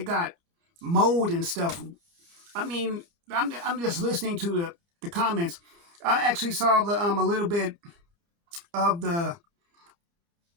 got mold and stuff. I mean, I'm just listening to the comments. I actually saw a little bit of the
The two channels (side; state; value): left; late; 29 ms